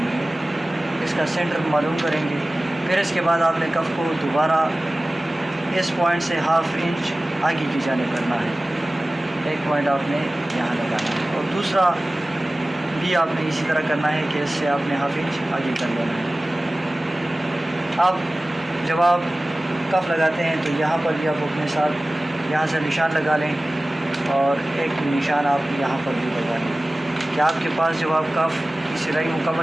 है, इसका सेंटर मालूम करेंगे। फिर इसके बाद आपने कफ़ को दोबारा इस पॉइंट से हाफ़ इंच आगे की जानिब करना है। एक पॉइंट आपने यहाँ लगाना है और दूसरा भी आपने इसी तरह करना है कि इससे आपने हाफ़ इंच आगे कर लेना है। अब जब आप कफ़ लगाते हैं तो यहाँ पर भी आप अपने साथ यहाँ से निशान लगा लें और एक निशान आप यहाँ पर भी लगा लें कि आपके पास जब आप कफ़ की सिलाई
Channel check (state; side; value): normal; both; correlation 0.97